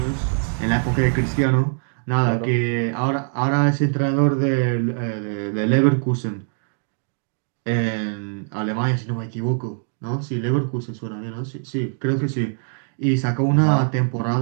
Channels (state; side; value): silent; left; 64 dB below the other